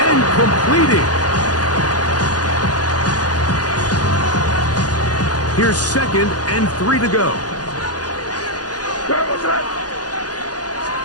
and completing. Here's second and 3 to go.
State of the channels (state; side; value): late; right; 0.69 ms